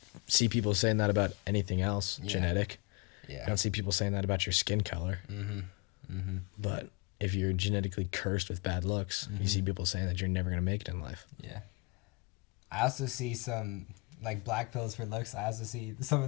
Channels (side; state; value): right; quieter; 28.8 dB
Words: see people saying that about anything else Yeah. genetic. You Yeah. don't see people saying that about your skin color. Mm-hmm. Mm-hmm. But if you're genetically cursed with bad looks, you see people saying that you're never going to make it in life. Yeah. I also see some like black pills for looks. I also see some